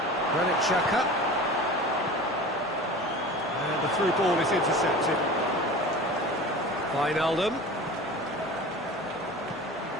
Granit Xhaka. And the through ball is intercepted. Wijnaldum.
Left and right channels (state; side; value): noise; right; hum, 28 dB below the sound